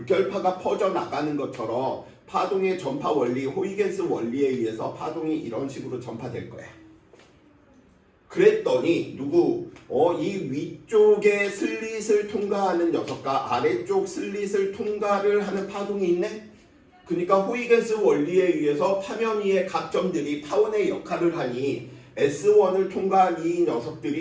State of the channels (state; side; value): identical; both; correlation 1.00